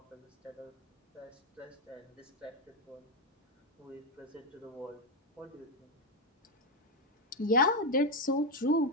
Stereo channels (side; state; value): both; normal; correlation 0.04